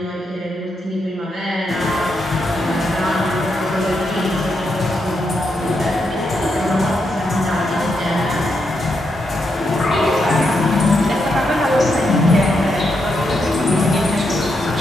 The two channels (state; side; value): normal; both; correlation 0.82